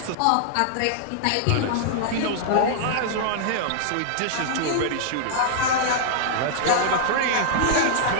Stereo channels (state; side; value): different; both; correlation -0.01